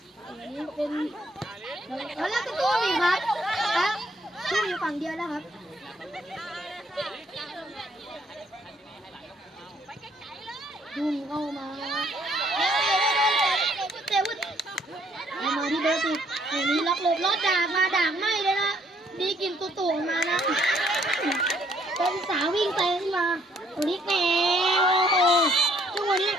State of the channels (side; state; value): both; normal; correlation 0.67